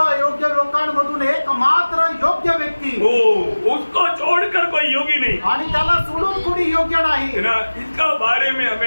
लोकांमधून एकमात्र योग्य व्यक्ती, वो उसको छोड़कर कोई योगी नहीं. आणि त्याला सोडून कोणी योग्य नाही. है ना, इसका बारे में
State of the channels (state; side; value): inverted; both; correlation -1.00